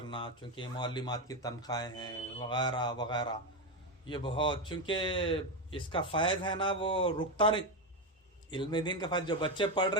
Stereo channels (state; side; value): normal; both; correlation 0.11